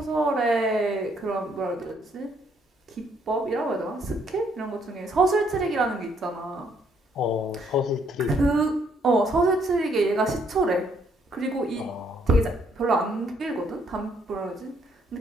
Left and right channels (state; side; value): normal; both; correlation 0.69